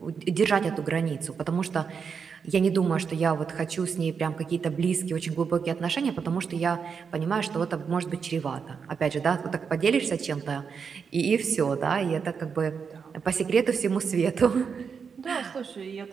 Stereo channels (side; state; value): left; quieter; 6.1 dB